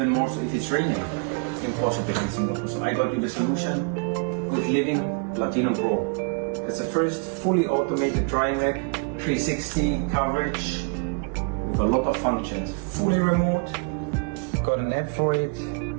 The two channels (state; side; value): quieter; left; 36.6 dB